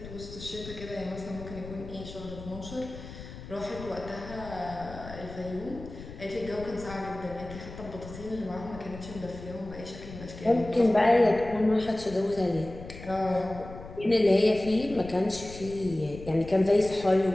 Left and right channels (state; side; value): noise; left; rumble, 13 dB below the sound